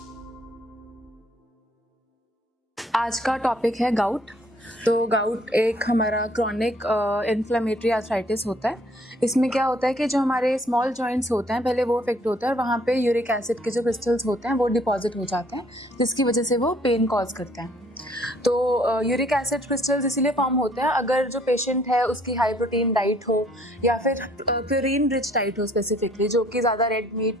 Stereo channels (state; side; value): normal; both; correlation 0.62